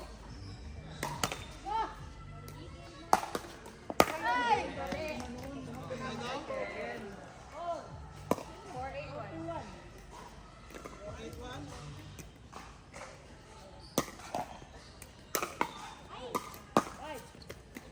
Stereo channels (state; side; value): identical; both; correlation 1.00